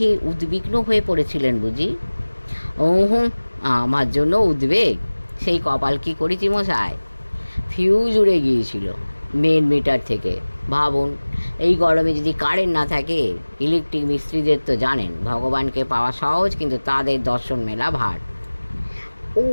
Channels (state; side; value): inverted; both; correlation -1.00